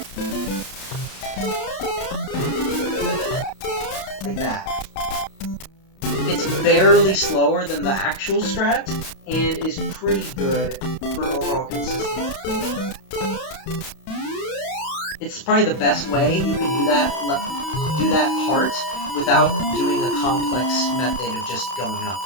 Like that. It's barely slower than the actual strat, and is pretty good for overall consistency. It's probably the best way you can do that part without doing a complex method of just going up.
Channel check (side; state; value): right; late; 32 ms